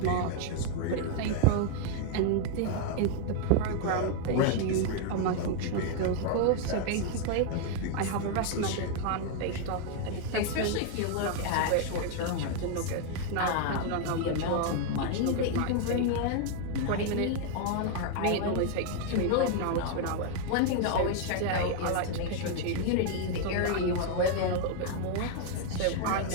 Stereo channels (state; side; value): different; both; correlation 0.00